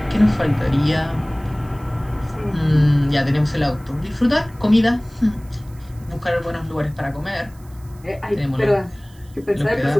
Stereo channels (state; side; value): noise; right; hiss, 28 dB below the sound